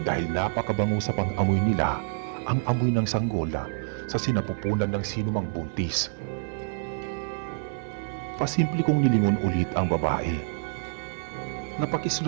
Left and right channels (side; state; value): left; silent; 60 dB below the other